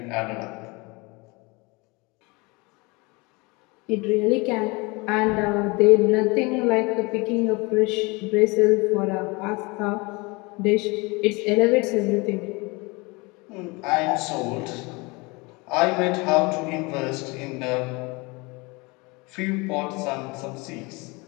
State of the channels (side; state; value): right; quieter; 26.3 dB